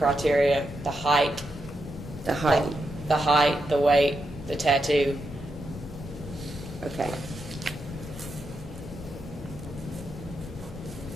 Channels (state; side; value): normal; both; correlation 0.85